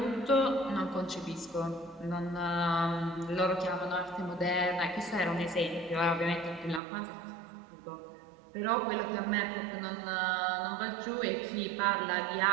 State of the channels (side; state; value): left; drops out; at 6.8 s